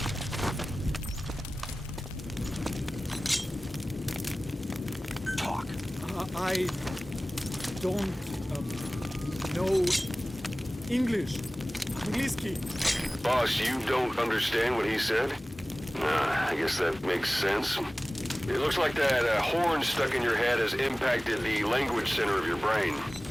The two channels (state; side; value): normal; both; correlation 0.97